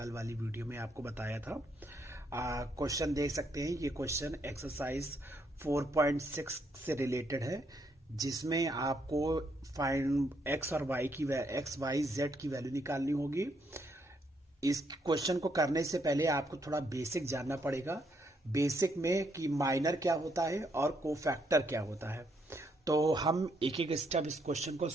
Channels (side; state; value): both; normal; correlation 0.74